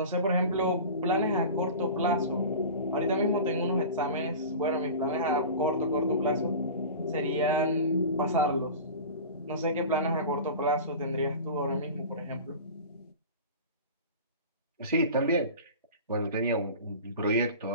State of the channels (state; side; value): inverted; both; correlation -0.34